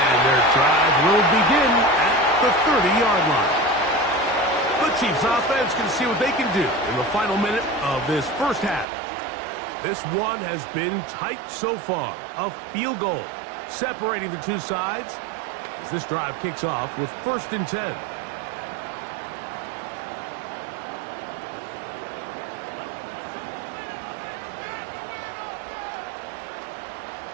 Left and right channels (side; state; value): left; drops out; at 8.8 s